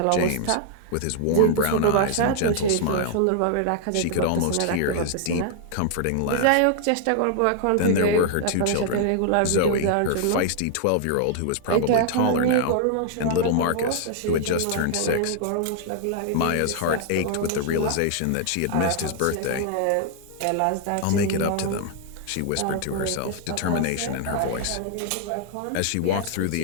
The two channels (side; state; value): both; different; correlation 0.00